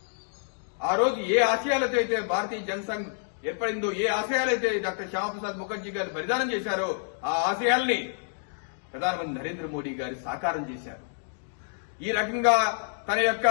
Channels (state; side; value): silent; right; digital silence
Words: ఆ రోజు ఏ ఆశయాలతో అయితే భారతీయ జనసంఘ్ ఏర్పడిందో, ఏ ఆశయాలైతే డాక్టర్ శ్యామప్రసాద్ ముఖర్జీ గారు బలిదానం చేశారో ఆ ఆశయాల్ని ప్రధానమంత్రి నరేంద్ర మోడీ గారు సాకారం చేశారు. ఈ రకంగా తన యొక్క